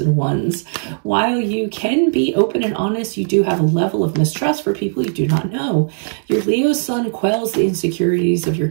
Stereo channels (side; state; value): left; silent; digital silence